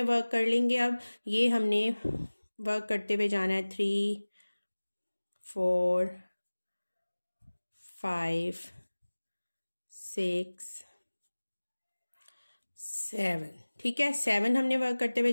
वर्क कर लेंगे। अब ये हमने वर्क करते हुए जाना है 3 4 5 6 7। ठीक है, 7 हमने वर्क करते हुए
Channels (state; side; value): inverted; both; correlation -1.00